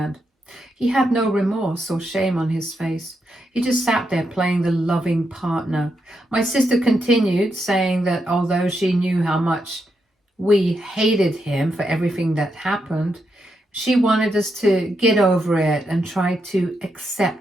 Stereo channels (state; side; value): normal; both; correlation 0.82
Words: He had no remorse or shame on his face. He just sat there playing the loving partner. My sister continued, saying that although she knew how much we hated him for everything that happened, she wanted us to get over it and try to